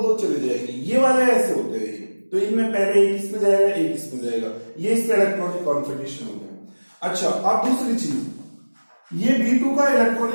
चले जाएंगे. ये वाले ऐसे होते हैं, तो इनमें पहले एक इसमें जाएगा एक इसमें जाएगा. ये इसका इलेक्ट्रॉनिक कॉन्फ़िगरेशन हो गया. अच्छा, अब दूसरी चीज, ये B2 का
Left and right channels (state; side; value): inverted; both; correlation -1.00